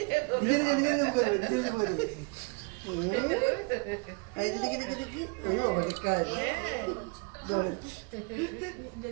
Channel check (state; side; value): quieter; left; 32.8 dB